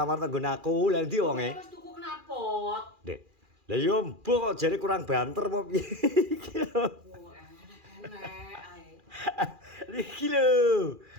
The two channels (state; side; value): late; left; 2.4 ms